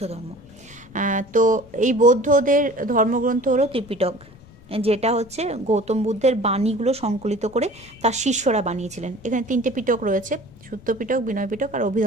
ধর্ম। তো এই বৌদ্ধদের ধর্মগ্রন্থ হলো ত্রিপিটক, যেটা হচ্ছে গৌতম বুদ্ধের বাণীগুলো সংকলিত করে তার শিষ্যরা বানিয়েছিলেন। এখানে 3টে পিটক রয়েছে, সূত্র পিটক, বিনয় পিটক আর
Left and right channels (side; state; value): left; noise; rumble, 23 dB below the sound